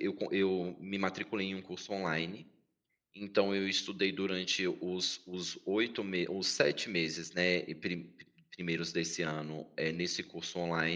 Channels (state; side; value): identical; both; correlation 1.00